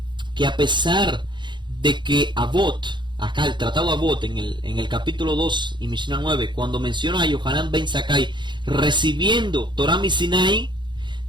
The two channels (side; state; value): left; late; 0.22 ms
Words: que a pesar de que Avot, acá el tratado Avot en el capítulo 2 y Mishnah 9, cuando menciona a Yohanan ben Zakkai recibiendo Torah mi Sinai,